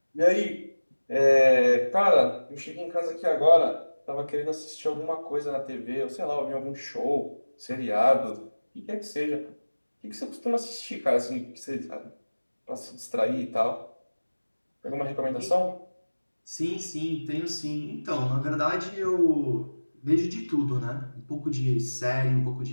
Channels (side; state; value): both; inverted; correlation -1.00